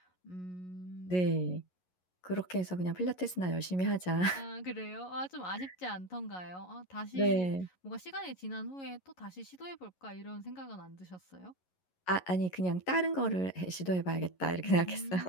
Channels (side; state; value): right; late; 11 ms